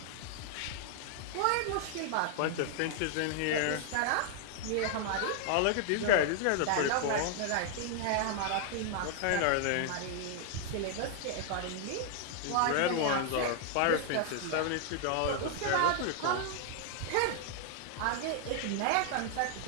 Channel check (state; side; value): different; both; correlation 0.00